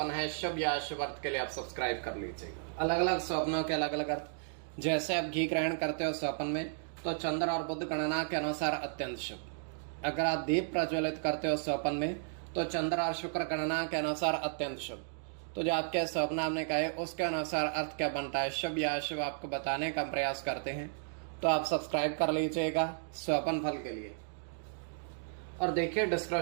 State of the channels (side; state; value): left; silent; digital silence